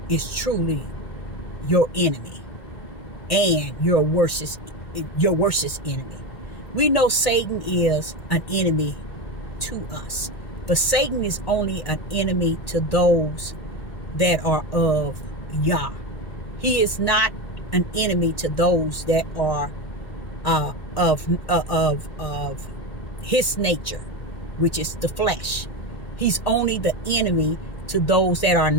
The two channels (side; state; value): right; late; 1.8 ms